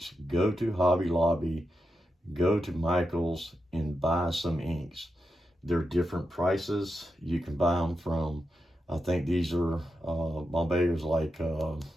Go to Hobby Lobby, go to Michael's and buy some inks. They're different prices. You can buy them from, I think these are, Bombay's like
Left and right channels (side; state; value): both; normal; correlation 0.88